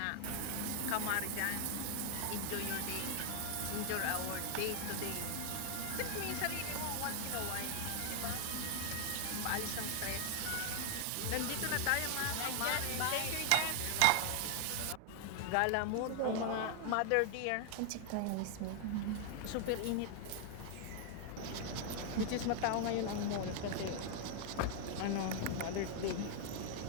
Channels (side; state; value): both; different; correlation 0.00